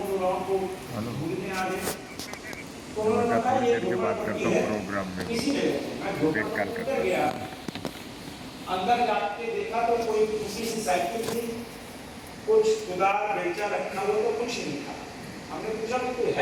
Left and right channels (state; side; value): identical; both; correlation 1.00